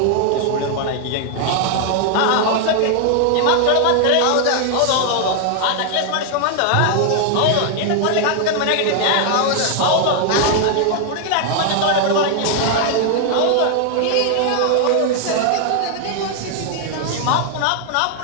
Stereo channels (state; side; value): different; both; correlation 0.00